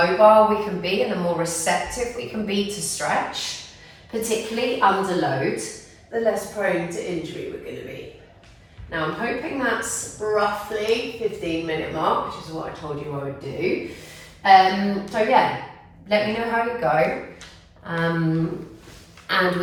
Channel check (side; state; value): both; identical; correlation 1.00